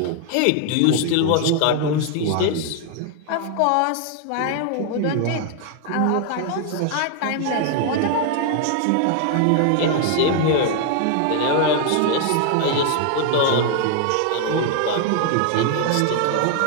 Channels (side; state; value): both; different; correlation 0.00